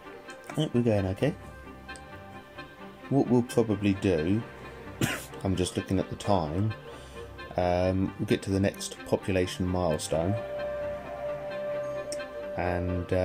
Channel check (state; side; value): identical; both; correlation 1.00